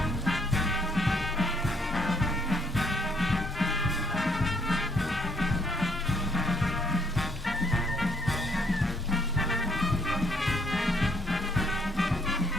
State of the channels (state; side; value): normal; both; correlation 0.67